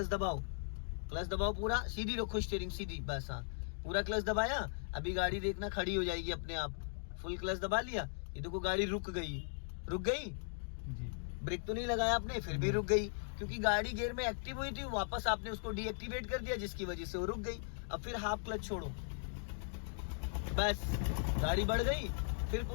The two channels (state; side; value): silent; right; digital silence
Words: दबाओ पूरा, सीधी रखो स्टीयरिंग सीधी, बस, हाँ। पूरा क्लच दबाया, अभी गाड़ी देखना खड़ी हो जाएगी अपने आप। फुल क्लच दबा लिया, ये देखो गाड़ी रुक गई जी। ब्रेक तो नहीं लगाया आपने, फिर भी रुक गई, क्योंकि गाड़ी गियर में एक्टिव हुई थी, वापस आपने उसको डीएक्टिवेट कर दिया जिसकी वजह से वो रुक गई। अब फिर हाफ क्लच छोड़ो, बस गाड़ी बढ़ गई, फिर